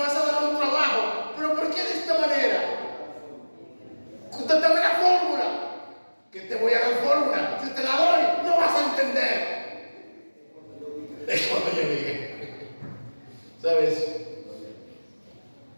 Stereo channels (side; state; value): both; inverted; correlation -1.00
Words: a dar un trabajo? ¿Pero por qué de esta manera? Dame la fórmula. Que te voy a dar fórmula. Si te la doy, no vas a entender. Es cuando yo diga. ¿Sabes?